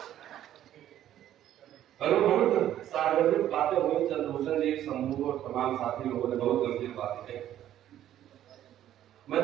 बहुत सार्वजनिक बातें हुई, चंद्रभूषण जी, शंभू और तमाम साथी लोगों ने बहुत गंभीर बातें कही। मैं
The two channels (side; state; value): left; quieter; 11.9 dB